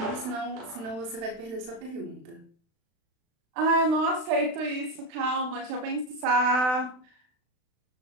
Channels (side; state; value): left; late; 36 ms